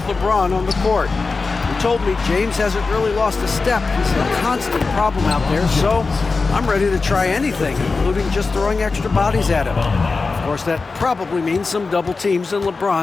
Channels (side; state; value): right; quieter; 4.1 dB